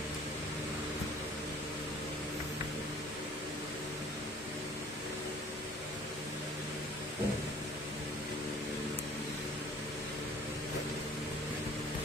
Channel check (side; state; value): both; normal; correlation 0.51